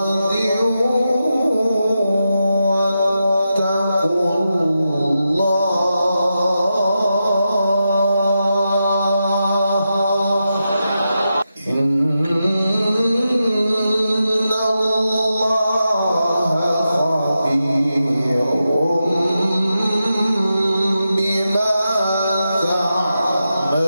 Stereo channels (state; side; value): inverted; both; correlation -0.88